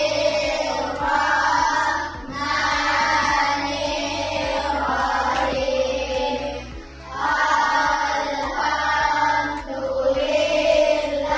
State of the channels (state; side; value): identical; both; correlation 1.00